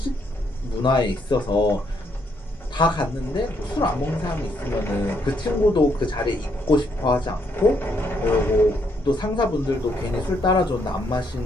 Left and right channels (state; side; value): normal; both; correlation 0.73